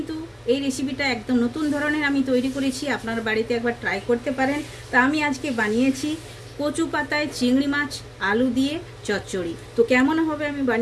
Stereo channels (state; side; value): identical; both; correlation 1.00